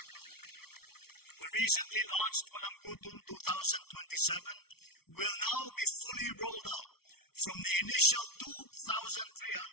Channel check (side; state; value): right; late; 0.95 ms